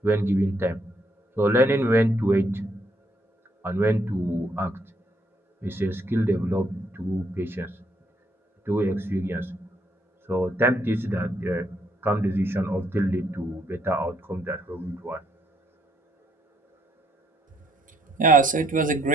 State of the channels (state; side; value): normal; both; correlation 0.71